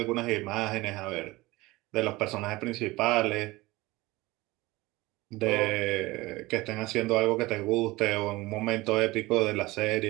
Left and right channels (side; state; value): left; quieter; 20.5 dB